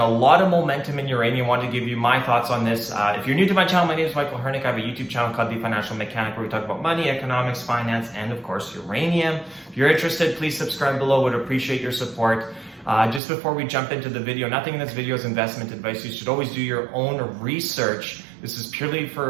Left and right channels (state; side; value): drops out; left; at 13.2 s